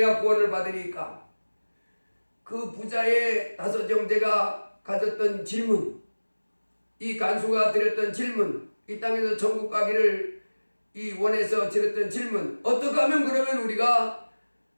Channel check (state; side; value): inverted; both; correlation -1.00